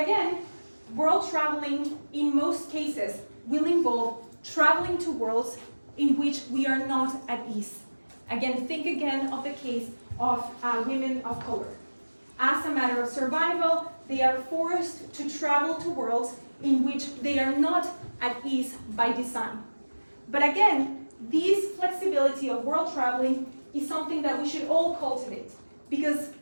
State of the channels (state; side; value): inverted; both; correlation -1.00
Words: again, world traveling in most cases will involve traveling to worlds in which we are not at ease. Again, think again of the case of women of color. As a matter of survival, they are forced to travel to worlds in which they are not at ease by design. But again, this flexibility of world traveling is something that we should all cultivate, because